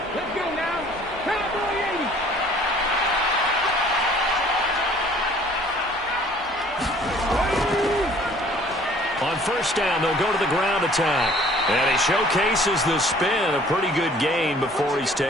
Let's go now. Cowboy 80. On 1st down, they'll go to the ground attack. And he showcases the spin. A pretty good gain before he's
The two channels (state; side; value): normal; both; correlation 0.54